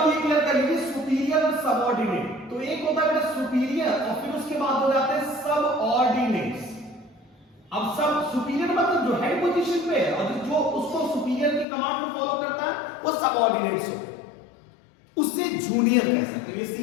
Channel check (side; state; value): right; drops out; at 11.7 s